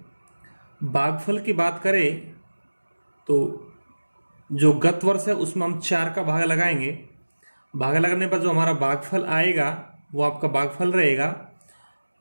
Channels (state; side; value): inverted; both; correlation -1.00